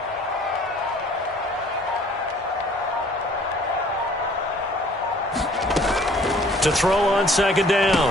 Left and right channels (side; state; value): both; normal; correlation 0.55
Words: To throw on 2nd